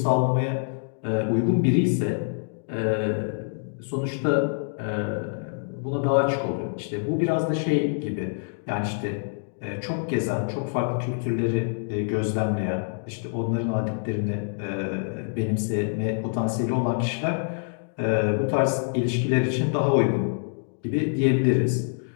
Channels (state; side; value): silent; right; digital silence